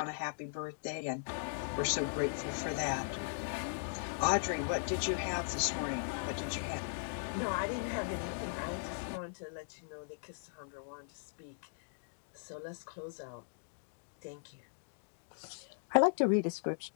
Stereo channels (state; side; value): silent; right; digital silence